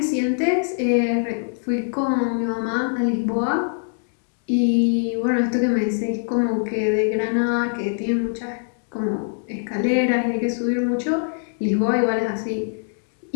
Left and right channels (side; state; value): right; silent; digital silence